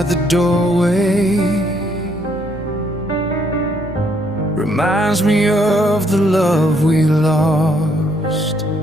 the doorway reminds me of the love we lost.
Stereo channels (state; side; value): normal; both; correlation 0.70